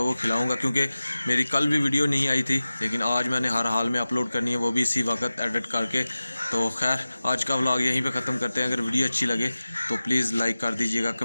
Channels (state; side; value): inverted; both; correlation -0.97